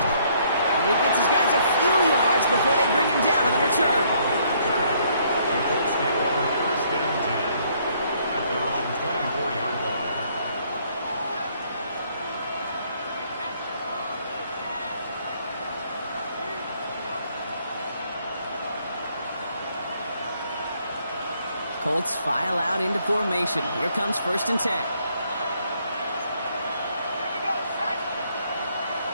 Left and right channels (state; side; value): inverted; both; correlation -0.67